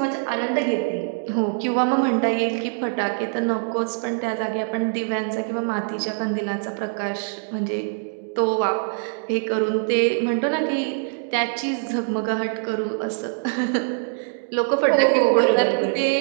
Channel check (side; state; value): left; silent; digital silence